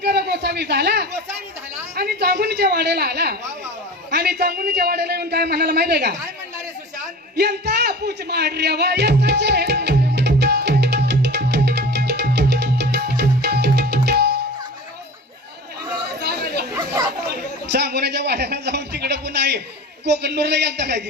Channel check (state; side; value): normal; both; correlation 0.36